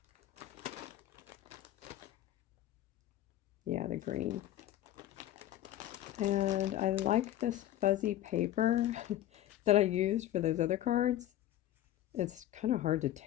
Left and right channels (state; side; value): quieter; right; 13.2 dB